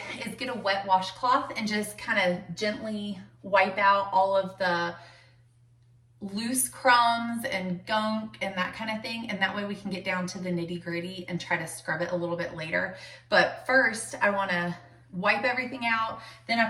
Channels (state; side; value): identical; both; correlation 1.00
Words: is get a wet washcloth and just kind of gently wipe out all of the loose crumbs and gunk and that kind of thing, and that way we can get down to the nitty-gritty and try to scrub it a little bit later. But first I want to wipe everything out, then I